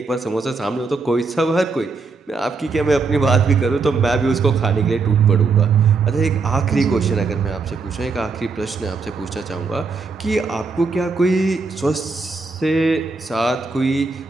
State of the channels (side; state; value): left; quieter; 4.4 dB